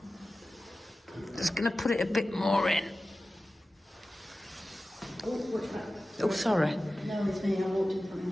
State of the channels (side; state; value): both; normal; correlation 0.95